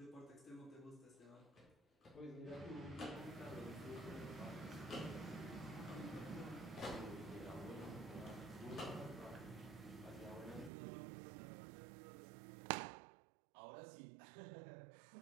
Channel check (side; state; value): left; drops out; at 10.7 s